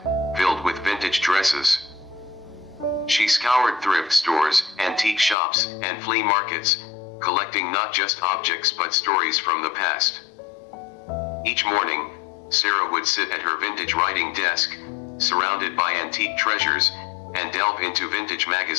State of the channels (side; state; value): right; drops out; at 5.4 s